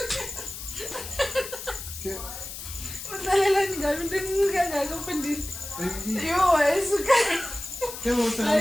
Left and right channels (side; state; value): left; noise; hiss, 10 dB below the sound